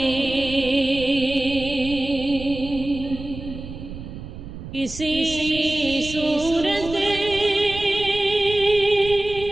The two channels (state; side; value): noise; right; rumble, 11 dB below the sound